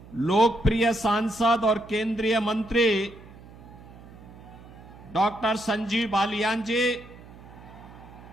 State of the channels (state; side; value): noise; right; hum, 19 dB below the sound